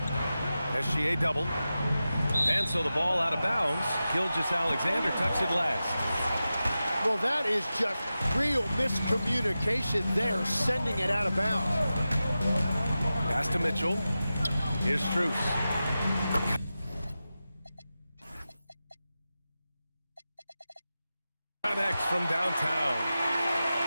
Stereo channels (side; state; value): both; inverted; correlation -0.93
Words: SGA double. And so the ball out of bounds. Gilgeous-Alexander tucks it last. Well, that is just real miscommunication there, sending it out of bounds. Pass to Mitchell. Here's Strus. Next from downtown.